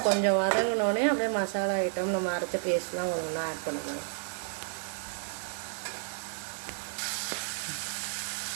கொஞ்சம் வதங்கினோடனே அப்படியே மசாலா ஐட்டம் நம்ம அரைச்ச பேஸ்ட்லாம் ஒன்றா ஆட் பண்ணணும்.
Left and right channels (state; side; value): silent; left; digital silence